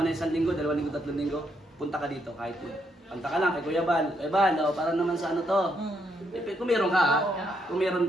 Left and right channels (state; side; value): normal; both; correlation 0.76